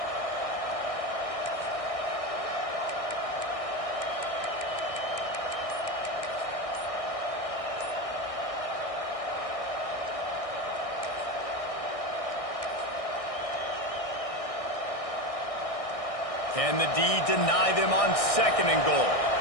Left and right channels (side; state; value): right; late; 1.6 ms